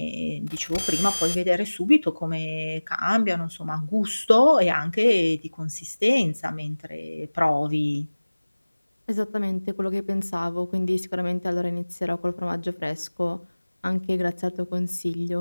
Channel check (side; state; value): both; inverted; correlation -1.00